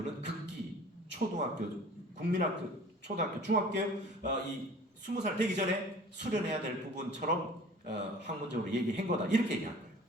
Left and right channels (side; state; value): both; normal; correlation 0.46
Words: 극기, 초등학교, 국민학교, 초등학교, 중학교 이 20살 되기 전에 수련해야 될 부분처럼 학문적으로 얘기한 거다. 이렇게 얘기한 거예요.